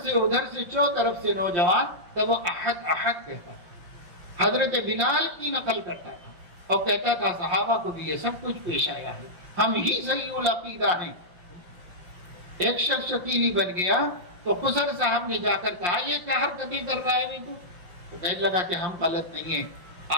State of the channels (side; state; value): left; late; 5.7 ms